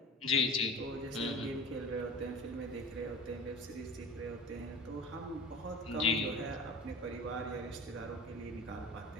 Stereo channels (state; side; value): normal; both; correlation 0.35